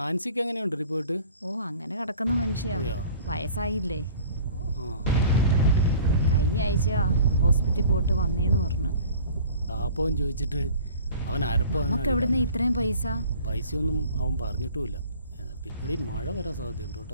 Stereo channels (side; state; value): both; inverted; correlation -0.47